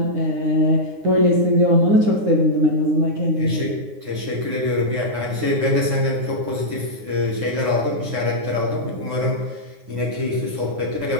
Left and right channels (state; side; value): late; left; 9.7 ms